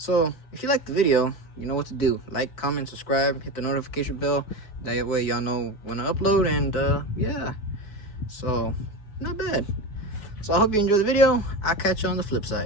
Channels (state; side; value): late; right; 4.7 ms